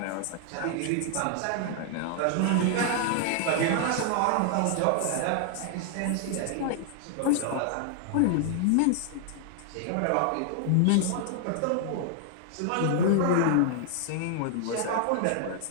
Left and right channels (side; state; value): both; different; correlation 0.00